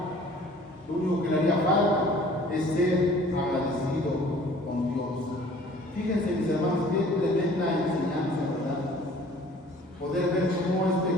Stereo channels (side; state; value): both; normal; correlation 0.51